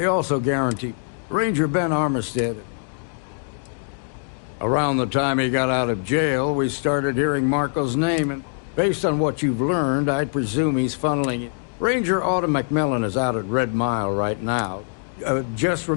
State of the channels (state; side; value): silent; right; digital silence